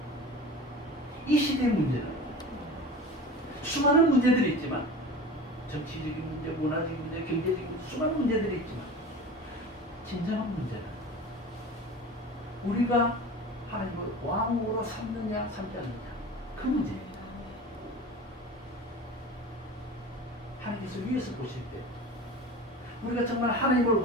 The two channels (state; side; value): normal; both; correlation 0.35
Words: 이 시대의 문제는 수많은 문제들이 있지만, 정치적인 문제, 문화적인 문제, 경제적인 문제, 수많은 문제들이 있지만, 진정한 문제는 우리가 하나님을 왕으로 삼느냐 삼지 않느냐, 그 문제입니다. 하나님께서 위에서 보실 때 우리가 정말 하나님을